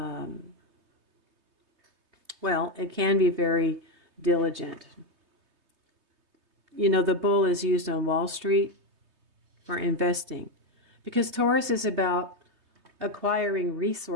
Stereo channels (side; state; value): left; late; 3.2 ms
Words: well, it can be very diligent. You know, the bull is used on Wall Street for investing, because Taurus is about acquiring